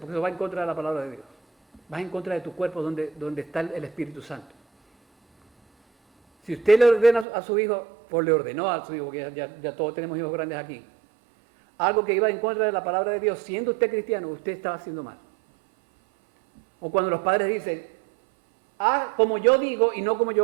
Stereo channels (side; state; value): left; drops out; at 7.2 s